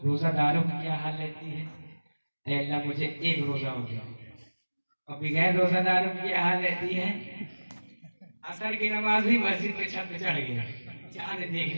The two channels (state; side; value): inverted; both; correlation -1.00